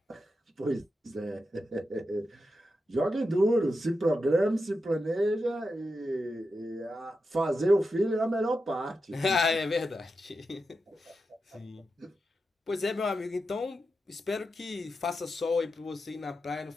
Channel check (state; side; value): normal; both; correlation 0.88